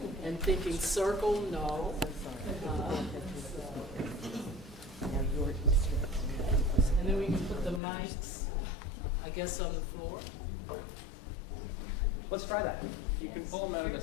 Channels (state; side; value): drops out; right; at 7.8 s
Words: and thinking, circle, no. And then we can put the mics, I guess, on the floor. Let's try that. You can pull them out of